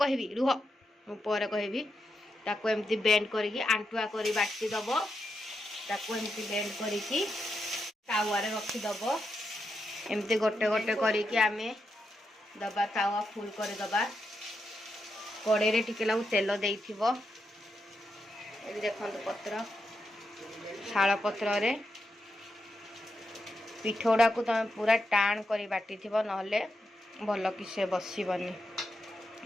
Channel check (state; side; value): normal; both; correlation 0.85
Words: रुह पर कहबी ताको एमती बेंड करके आंटुआ करी बाटी दब ताको एमती बेंड करके तावा रे रखी दब एमती गोटे गोटे करके आमे दबा तावा फुल कर दबा कड़े रे टिके लागू तेल देइथिबो एबी देखंतु पत्र शाल पत्र रे पिठोड़ा को तुम पूरा टाण करी बाटी थिबो नहले भल कि से बसिबनी